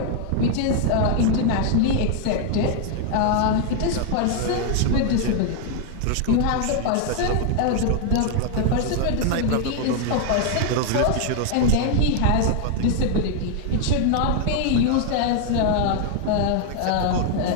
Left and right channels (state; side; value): different; both; correlation 0.00